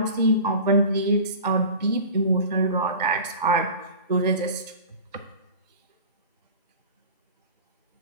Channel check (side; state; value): both; inverted; correlation -0.37